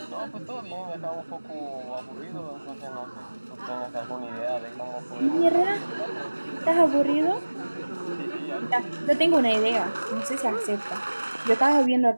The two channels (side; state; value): both; inverted; correlation -1.00